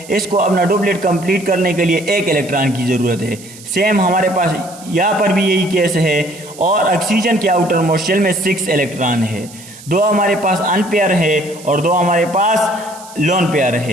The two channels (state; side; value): noise; right; hiss, 19 dB below the sound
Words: इसको अपना डुप्लेट कंप्लीट करने के लिए 1 इलेक्ट्रॉन की ज़रूरत है। सेम हमारे पास यहाँ पर भी यही केस है। और ऑक्सीजन के आउटर मोस्ट शेल में 6 इलेक्ट्रॉन है। 2 हमारे पास अनपेयर है और 2 हमारे पास लोन पेयर